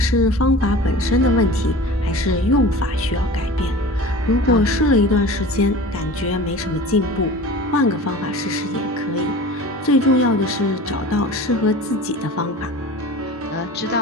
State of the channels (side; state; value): both; normal; correlation 0.37